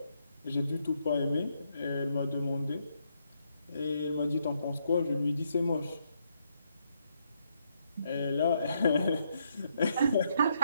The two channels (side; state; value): both; inverted; correlation -0.76